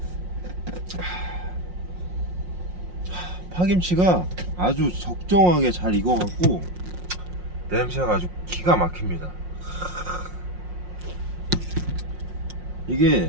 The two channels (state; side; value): late; left; 5.6 ms